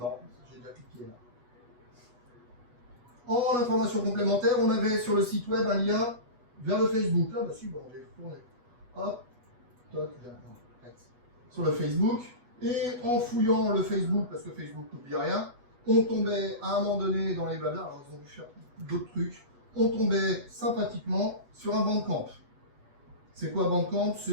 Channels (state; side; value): late; left; 8.2 ms